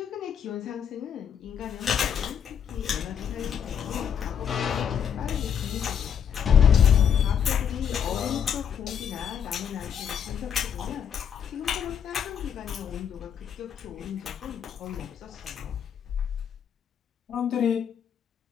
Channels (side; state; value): right; quieter; 8.1 dB